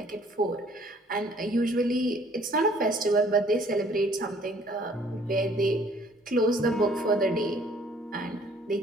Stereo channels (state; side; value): normal; both; correlation 0.58